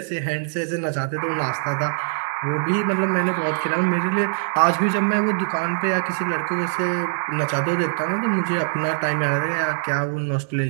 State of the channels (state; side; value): silent; left; digital silence